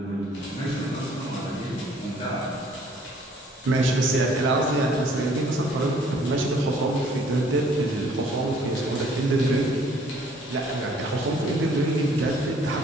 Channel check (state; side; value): normal; both; correlation 0.59